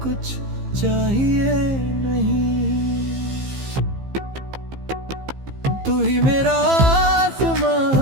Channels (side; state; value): left; late; 15 ms